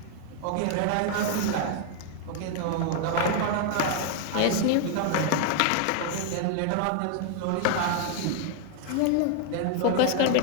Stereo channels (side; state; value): both; different; correlation 0.00